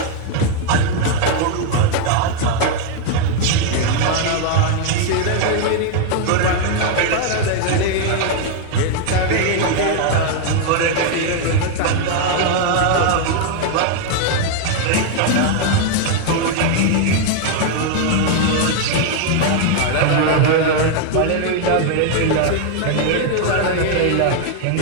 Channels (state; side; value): different; both; correlation 0.00